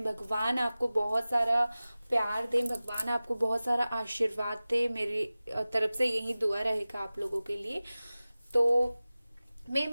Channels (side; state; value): both; inverted; correlation -0.97